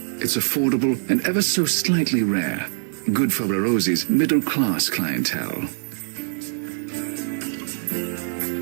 It's affordable and ever so slightly rare. Good for Barozzi's middle-class clientele.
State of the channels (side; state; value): left; silent; digital silence